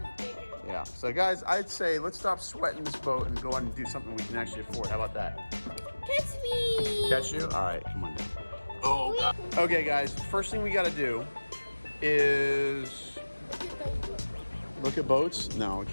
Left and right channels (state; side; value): inverted; both; correlation -1.00